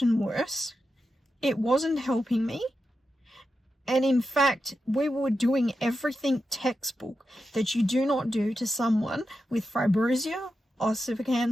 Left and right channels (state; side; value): normal; both; correlation 0.89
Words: worse. It wasn't helping me. And in fact, we were doing everything textbook that you do not do to someone with fibrosia,